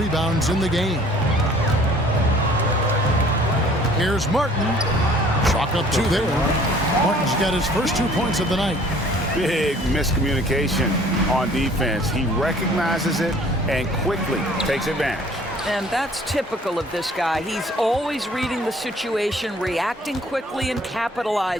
in the game. Here's Martin. Chalk up 2 there. Martin's got his first 2 points of the night. big miscommunication on defense. He recognizes it and quickly takes advantage. And that's typical of this guy. He's always reading the situation, reacting quickly, and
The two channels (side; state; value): both; normal; correlation 0.54